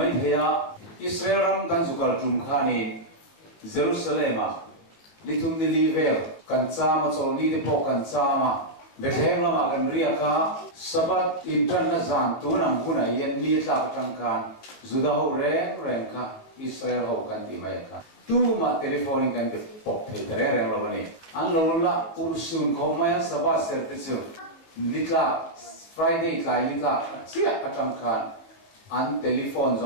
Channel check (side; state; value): right; late; 19 ms